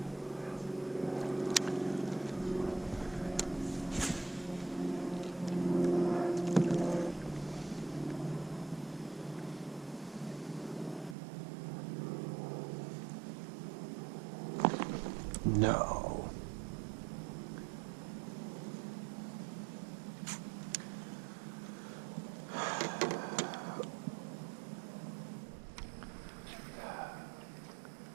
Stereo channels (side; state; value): left; drops out; at 11.2 s